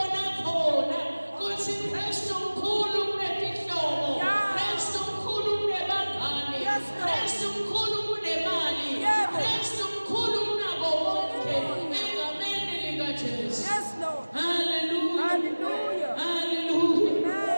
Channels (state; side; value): inverted; both; correlation -1.00